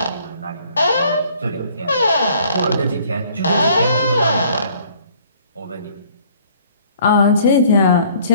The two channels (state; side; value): inverted; both; correlation -0.58